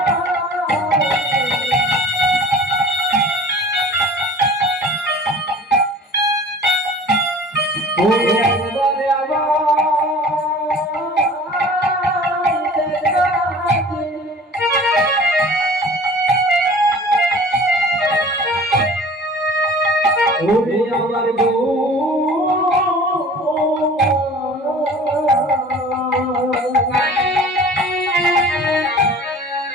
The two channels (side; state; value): both; normal; correlation 0.44